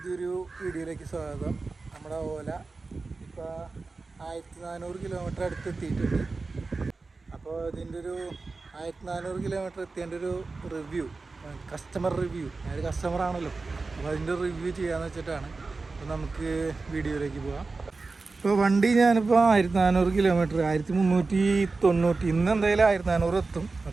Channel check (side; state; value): left; quieter; 3.9 dB